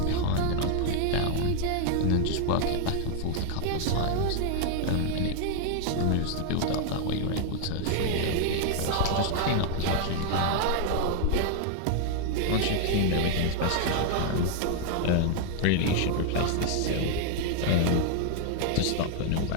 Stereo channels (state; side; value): different; both; correlation 0.00